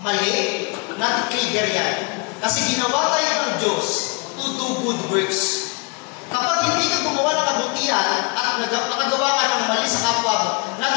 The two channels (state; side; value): quieter; right; 30.7 dB